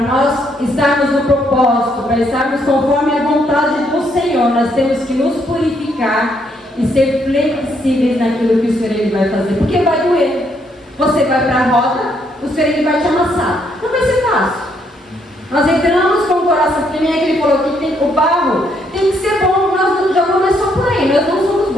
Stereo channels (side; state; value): both; normal; correlation 0.72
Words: nós estarmos no propósito, para estarmos conforme a vontade do Senhor, nós temos que nos purificar e ser flexíveis naquilo que o Senhor Ele vai fazer. Porque vai doer. Você vai para a roda, o Senhor Ele vai te amassar. Não vai ser fácil. Nós entramos com o coração, porque nem é que Ele falou que o barro tem que ser bom. Nós já começamos por aí, nós não somos